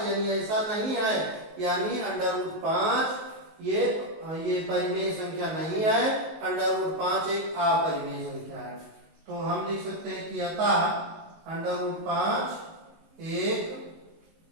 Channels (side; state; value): left; late; 19 ms